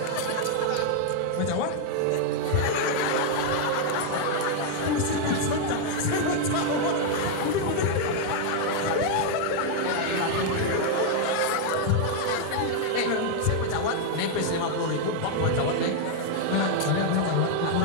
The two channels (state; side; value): different; both; correlation 0.00